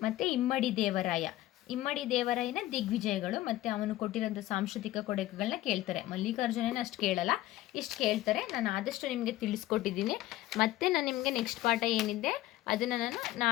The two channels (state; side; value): quieter; right; 15.7 dB